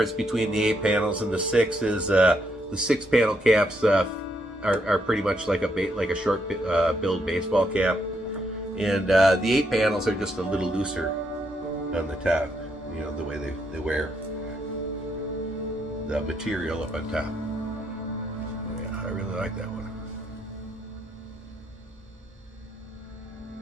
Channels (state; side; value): normal; both; correlation 0.77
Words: between the 8 panels and the 6 is the 6-panel caps are pretty much like a short billed baseball cap, and the 8 panels are just a little looser on the top. You know, the way they wear the material up on top. Yeah, I really like that one.